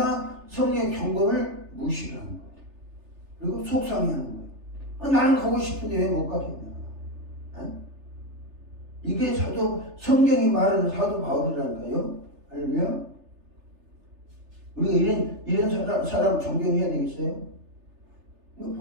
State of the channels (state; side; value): late; left; 3.3 ms